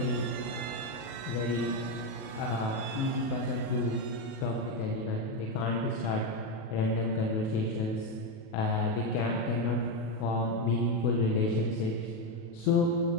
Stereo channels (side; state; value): right; late; 37 ms